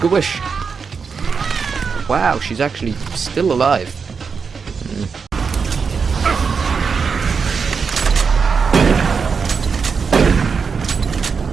a wish. Wow, she's actually still alive.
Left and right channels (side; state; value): left; quieter; 5.6 dB